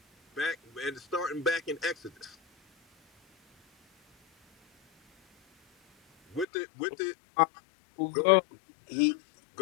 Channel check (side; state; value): right; drops out; at 6.5 s